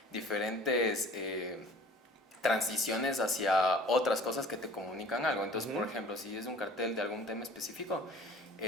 diferentes transiciones hacia otras cosas que te comunican algo. Entonces, por ejemplo, si es un cartel de algún tema específico,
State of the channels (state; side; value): normal; both; correlation 0.48